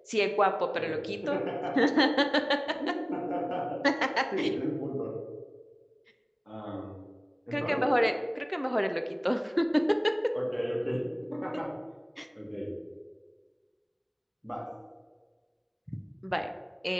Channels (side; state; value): both; identical; correlation 1.00